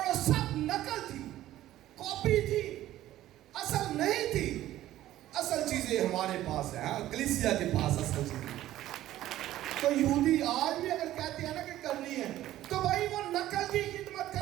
وہ سب نقل تھی، کاپی تھی، اصل نہیں تھی. اصل چیزیں ہمارے پاس ہیں، کلیسیا کے پاس اصل چیزیں. تو یہودی آج بھی اگر کہتے ہیں نا کہ کرنی ہے تو بھائی وہ نقل کی خدمت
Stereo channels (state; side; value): quieter; left; 14.0 dB